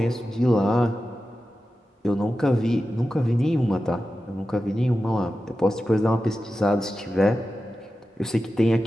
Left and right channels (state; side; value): normal; both; correlation 0.93